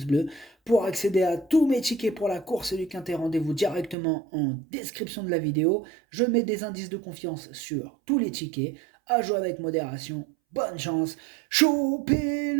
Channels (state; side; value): drops out; left; at 4.0 s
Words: bleus. Pour accéder à tous mes tickets pour la course du Quintet, rendez-vous directement en description de la vidéo. Je mets des indices de confiance sur tous les tickets. À jouer avec modération. Bonne chance.